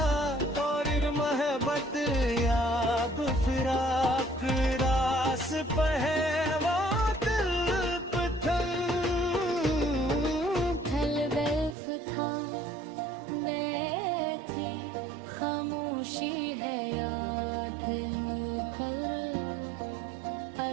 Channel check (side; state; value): left; drops out; at 11.8 s